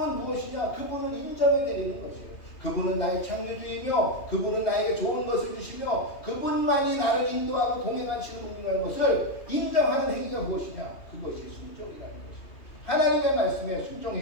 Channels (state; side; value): late; right; 2.8 ms